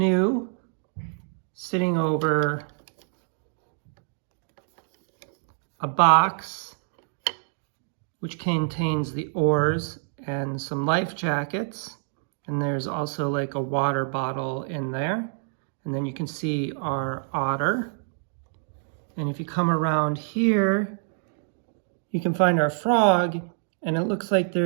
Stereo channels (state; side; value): silent; left; digital silence